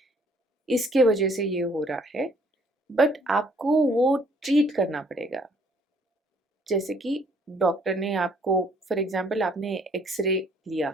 इसके वजह से ये हो रहा है, बट आपको वो ट्रीट करना पड़ेगा. जैसे कि डॉक्टर ने आपको, फॉर एग्जांपल आपने एक्सरे लिया,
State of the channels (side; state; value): both; normal; correlation 0.62